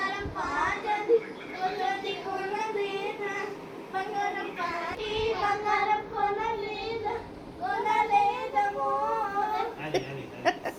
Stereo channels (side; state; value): both; identical; correlation 1.00